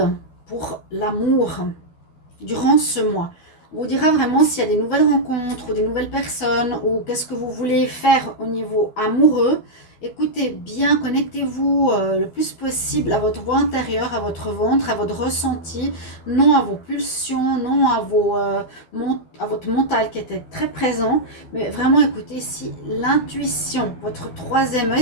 pour l'amour durant ce mois. On vous dira vraiment s'il y a des nouvelles rencontres ou des nouvelles personnes ou qu'est-ce que vous voulez faire au niveau amoureux. écoutez bien, connectez-vous le plus possible à votre voix intérieure, à votre ventre, à votre ressenti, non à vos pulsions, non à, à votre mental qui était très présent, mais vraiment écoutez ici l'intuition, votre troisième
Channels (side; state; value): right; late; 12 ms